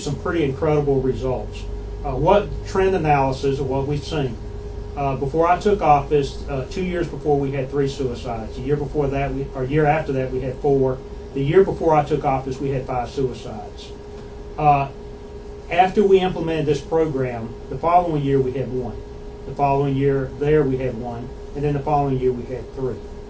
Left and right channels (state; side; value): identical; both; correlation 1.00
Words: pretty incredible results. What trend analysis of what we've seen. Before I took office, 2 years before, we had 3 suicides. The year before that, year after that, we had 4. The year before I took office, we had 5 suicides. After we implemented this program, the following year we had 1. The following year we had 1, and then the following year we had 3.